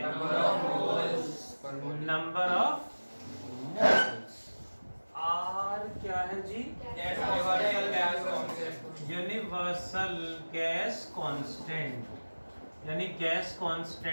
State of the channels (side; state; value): both; inverted; correlation -1.00